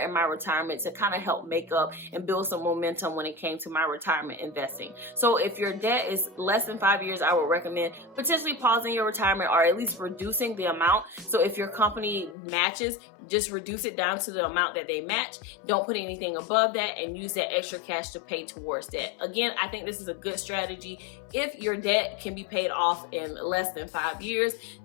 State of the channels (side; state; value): right; drops out; at 12.4 s